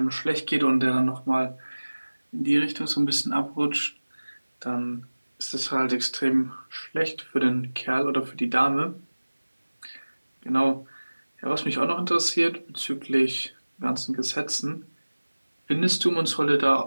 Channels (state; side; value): inverted; both; correlation -1.00